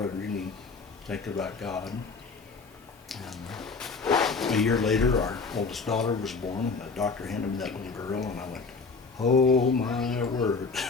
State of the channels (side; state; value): right; quieter; 4.5 dB